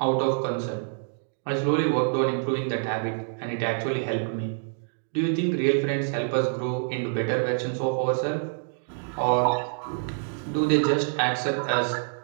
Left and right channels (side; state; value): left; silent; digital silence